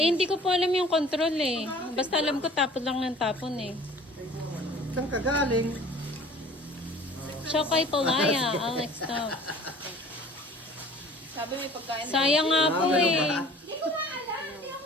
hindi ko po alam yung control eh. Basta alam ko tapon lang ng tapon eh. Saan ka galing? Chokoy Palaya, Alex Top. Sabi may pagkain. Sayang nga po ganun eh. ba?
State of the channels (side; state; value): both; normal; correlation 0.48